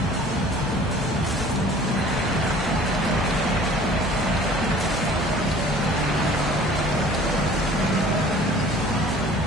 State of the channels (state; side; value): noise; right; hum, 15 dB below the sound